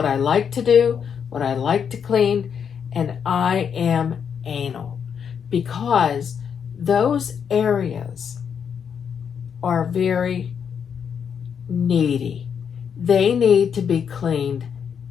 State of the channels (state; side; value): quieter; right; 7.4 dB